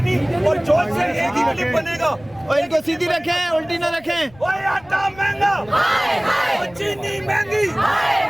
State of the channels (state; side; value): noise; left; rumble, 24 dB below the sound